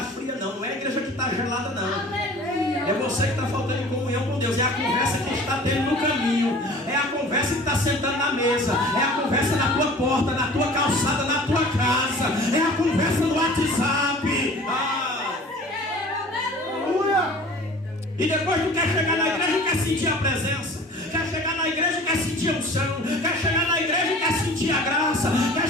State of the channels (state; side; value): normal; both; correlation 0.45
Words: fria, não. Não é a igreja que está gelada, não. É você que está faltando em comunhão com Deus. É a conversa que está tendo no caminho. É a conversa que está sentando na mesa. É a conversa na tua porta, na tua calçada, na tua casa. É a conversa no WhatsApp. E depois tu quer chegar na igreja e quer sentir a presença. Quer chegar na igreja e quer sentir a unção. Quer chegar na igreja e quer sentir a graça. Quer